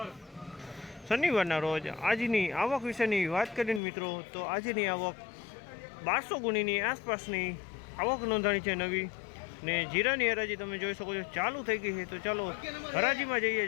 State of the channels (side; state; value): right; drops out; at 3.8 s